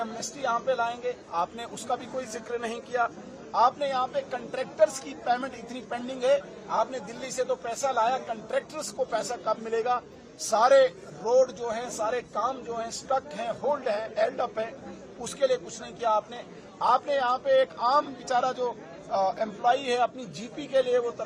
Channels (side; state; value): both; identical; correlation 1.00